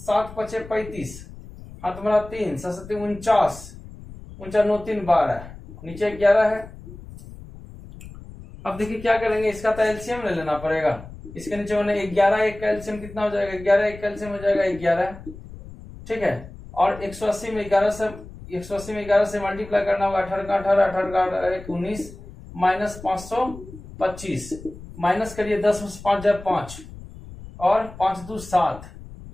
7 5 35 हाँ तुम्हारा 3 7 49 49 9 3 12 नीचे 11 है। अब देखिए क्या करेंगे इसका तो एलसीएम ले लेना पड़ेगा। इसके नीचे मैंने 11 एक का एलसीएम कितना हो जाएगा 11 एक का एलसीएम हो जाएगा 11, ठीक है। और 180 में 11 से मल्टीप्लाई करना होगा 18 का 18 18 का 19 माइनस 525 माइनस करिए 10 5 जाए 5 और 5 2 7,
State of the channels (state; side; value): noise; left; rumble, 16 dB below the sound